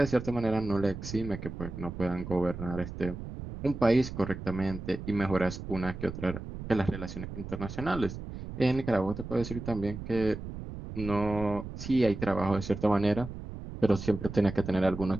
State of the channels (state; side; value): noise; right; rumble, 9 dB below the sound